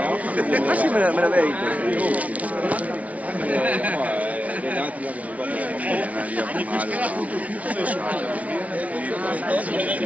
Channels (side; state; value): left; late; 0.068 ms